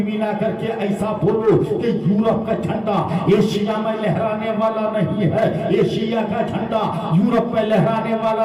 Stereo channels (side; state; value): both; identical; correlation 1.00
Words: ملا کر کے ایسا بولو کہ یورپ کا جھنڈا ایشیا میں لہرانے والا نہیں ہے، ایشیا کا جھنڈا یورپ میں لہرانے